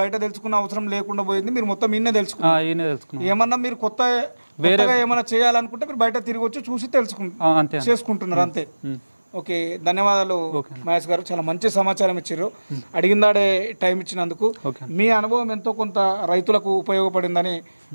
తెలుసుకున్న అవసరం లేకుండా పోయింది, మీరు మొత్తం ఈయనే తెలుసుకున్నారు. ఏమన్నా మీరు వేరేగా ఏమైనా చేయాలనుకుంటే మీరు బయట తిరిగి వచ్చి చూసి చేసుకుంటున్నారు అంతే. ఓకే, ధన్యవాదాలు మహేష్ గారు, చాలా మంచి సమాచారం ఇచ్చారు. అడిగిందాడే టైం ఇచ్చినందుకు. మీ అనుభవం ఎంతో కొంత రైతులకు ఉపయోగపడిందని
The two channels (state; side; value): inverted; both; correlation -1.00